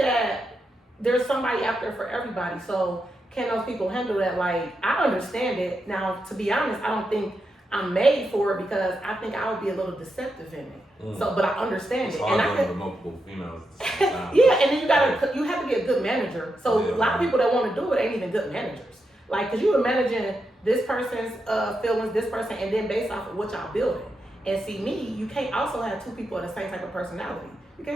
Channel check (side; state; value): both; normal; correlation 0.85